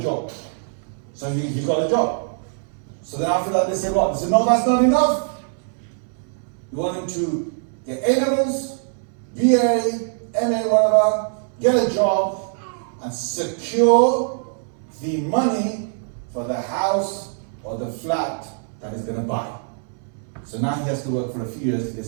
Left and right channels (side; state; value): left; silent; 64 dB below the other